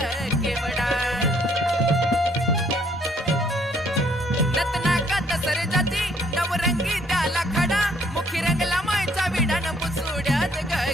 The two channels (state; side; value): normal; both; correlation 0.64